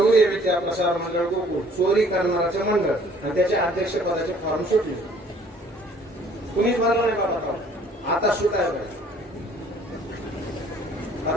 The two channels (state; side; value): normal; both; correlation 0.57